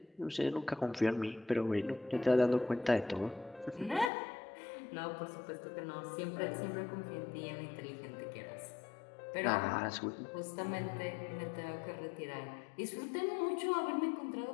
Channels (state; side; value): drops out; right; at 4.1 s